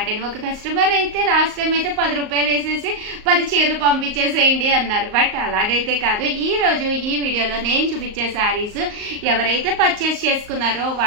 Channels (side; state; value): left; late; 38 ms